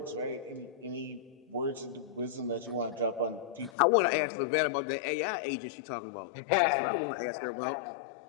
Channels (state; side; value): drops out; right; at 3.7 s